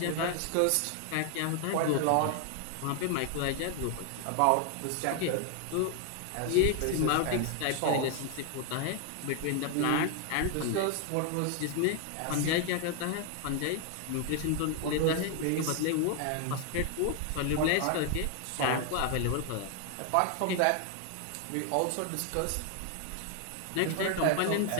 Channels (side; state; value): both; different; correlation 0.00